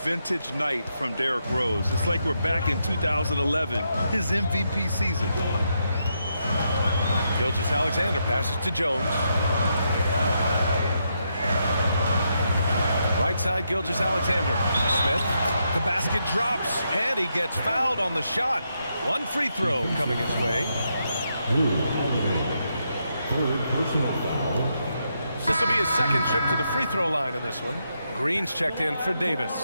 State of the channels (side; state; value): both; inverted; correlation -0.81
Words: night from Derrick Rose. It's like we're back in 2011, his MVP season. Gilgeous-Alexander passes to Jones. Right side, Gilgeous-Alexander. Smith, the basket drops, and he gets fouled on the shot. 1 free throw coming his way. Third personal foul. This will be his second trip to the free throw line in this one. Green's checked in for